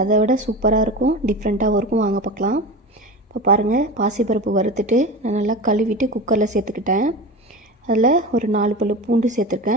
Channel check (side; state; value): both; normal; correlation 0.28